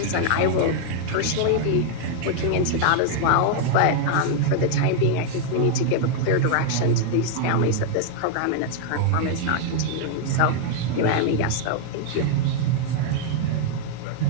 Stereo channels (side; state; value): both; different; correlation 0.00